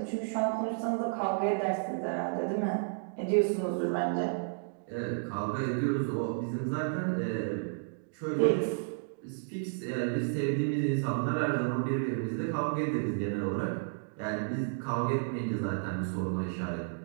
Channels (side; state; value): left; silent; digital silence